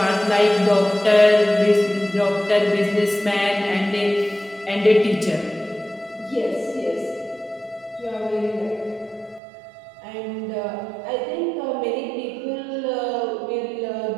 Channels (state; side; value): drops out; left; at 9.4 s